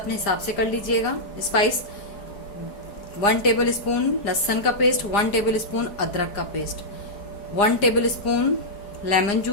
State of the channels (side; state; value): right; late; 4.9 ms